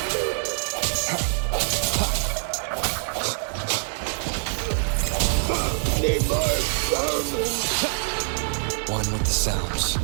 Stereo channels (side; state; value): left; silent; 58 dB below the other